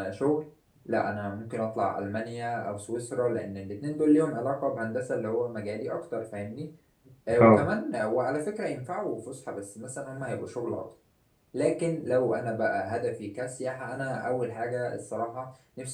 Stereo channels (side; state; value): both; identical; correlation 1.00